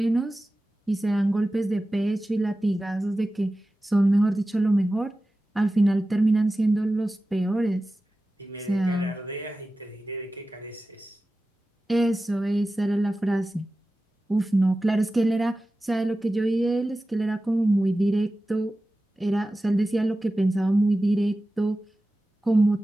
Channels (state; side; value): normal; both; correlation 0.95